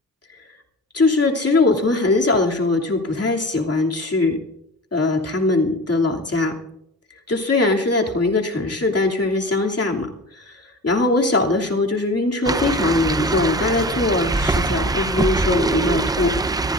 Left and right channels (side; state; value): both; normal; correlation 0.35